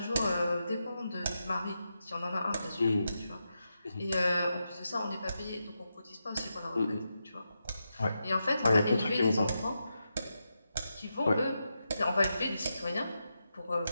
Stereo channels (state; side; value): inverted; both; correlation -0.87